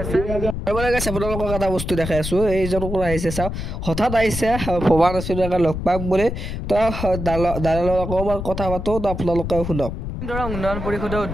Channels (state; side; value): noise; left; rumble, 5 dB below the sound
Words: আপোনালোকক এটা বস্তু দেখাই আছো এইজন কোন আহিছে চাওক হঠাৎ আহিছে ভবা নাছিলো লগ পাম বুলি তো দাদাৰ অকণমান কথা পাতো তো আপোনালোকে শুনক উন্নয়ন পৰিষদৰ